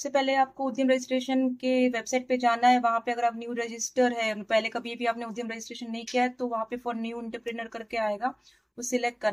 पहले आपको उद्यम रजिस्ट्रेशन के वेबसाइट पे जाना है। वहां पे अगर आप न्यू रजिस्टर है, पहले कभी भी आपने उद्यम रजिस्ट्रेशन नहीं किया है, तो वहां पे फॉर न्यू एंटरप्रेन्योर करके आएगा, वो सिलेक्ट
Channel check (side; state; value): both; identical; correlation 1.00